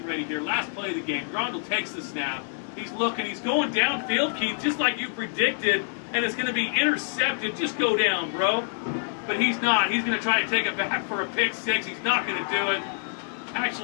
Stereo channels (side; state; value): right; silent; 61 dB below the other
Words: ready here. Last play of the game. Grondel takes the snap. He's looking. He's going downfield, Keith, just like you predicted, and it's going to be intercepted. Just go down, bro. But he's not. He's going to try to take it back for a pick 6. He's not going to do it.